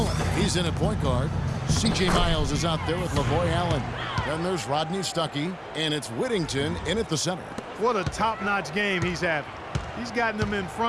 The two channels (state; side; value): identical; both; correlation 1.00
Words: he's in at point guard. C.J. Miles is out there with Lavoy Allen. Then there's Rodney Stuckey, and it's Whittington in at the center. What a top-notch game he's having. He's gotten them in